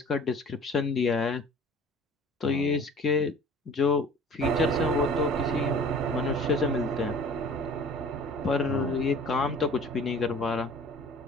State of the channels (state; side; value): normal; both; correlation 0.45